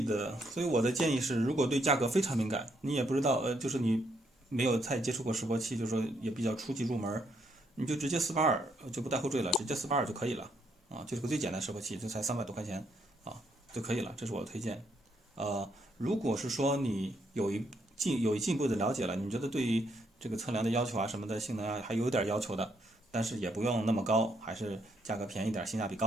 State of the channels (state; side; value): normal; both; correlation 0.74